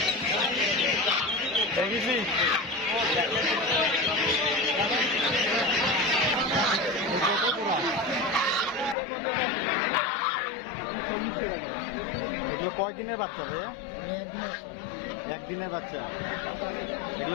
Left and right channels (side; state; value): right; drops out; at 9.0 s